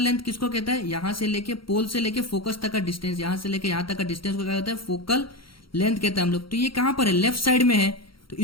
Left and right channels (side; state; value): right; late; 0.74 ms